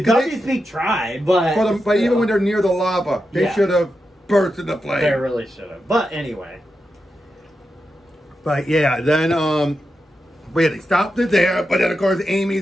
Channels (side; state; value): both; normal; correlation 0.88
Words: Peak tried, but even when they're near the lava, they should have burst in the flame. They really should have. But anyway. But yeah, then they stopped it there. But then of course